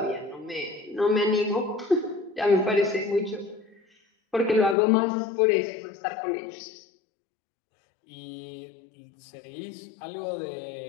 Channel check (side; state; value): right; drops out; at 4.8 s